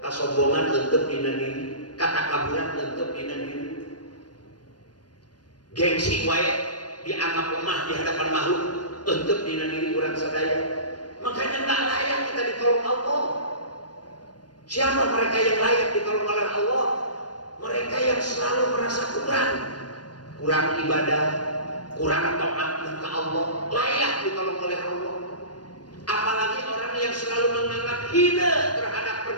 leunteup dina diri, katakaburan leunteup dina diri. Gengsi wae dianggap lemah di hadapan makhluk leunteup dina diri urang sadaya. Makanya tak layak kita ditolong Allah. Siapa mereka yang layak ditolong oleh Allah? Mereka yang selalu merasa kurang ibadah, kurang taat ke Allah, layak ditolong oleh Allah. Apalagi orang yang selalu menganggap hina terhadap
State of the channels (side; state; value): right; late; 0.69 ms